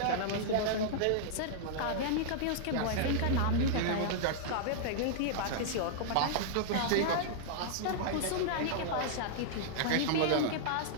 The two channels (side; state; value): both; different; correlation -0.01